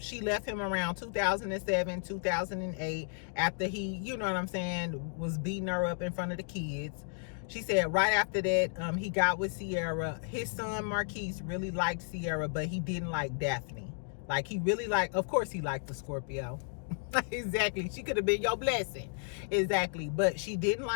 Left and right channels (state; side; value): silent; right; 56 dB below the other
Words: left him around 2007, 2008, after he, you know what I'm saying, was beating her up in front of the kids. She said right after that, he got with Sierra. His son Marquise really liked Sierra, but he didn't like Daphne. Like, he really liked, of course he liked the Scorpio. Exactly. She could have been your blessing. Exactly. But she didn't